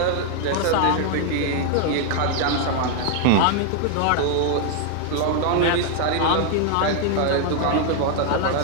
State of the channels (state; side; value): different; both; correlation 0.00